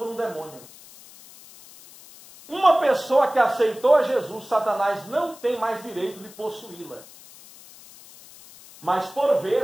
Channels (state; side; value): noise; left; hiss, 21 dB below the sound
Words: um demônio. Uma pessoa que aceitou a Jesus, Satanás não tem mais direito de possuí-la. Mas por